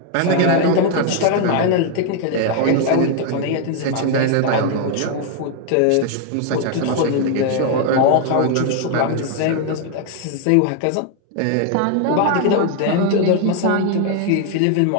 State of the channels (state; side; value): different; both; correlation 0.00